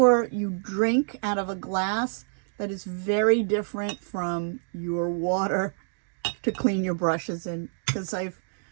you drink out of a glass that is very different from your water to clean your brushes in. Because I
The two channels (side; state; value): left; silent; digital silence